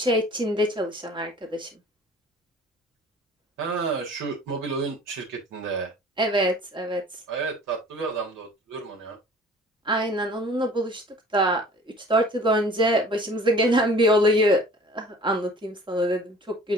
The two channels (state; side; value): normal; both; correlation 0.47